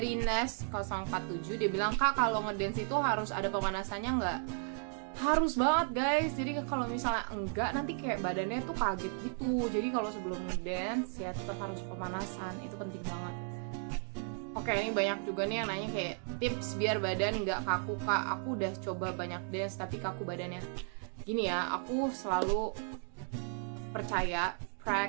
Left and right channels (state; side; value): silent; left; 55 dB below the other